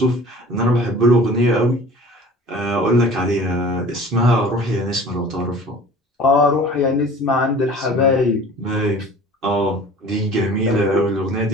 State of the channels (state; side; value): normal; both; correlation 0.44